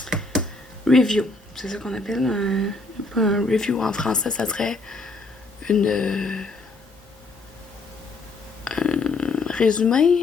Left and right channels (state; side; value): quieter; right; 3.3 dB